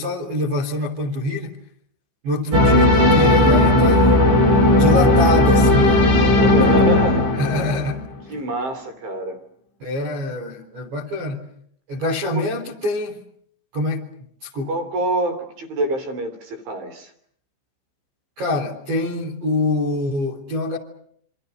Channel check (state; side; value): late; left; 15 ms